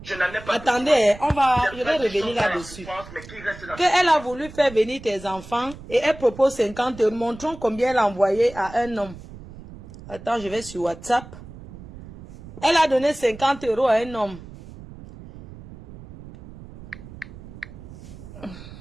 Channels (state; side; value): noise; right; rumble, 16 dB below the sound